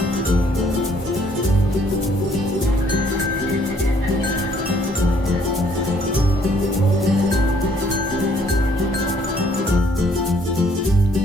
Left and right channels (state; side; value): normal; both; correlation 0.63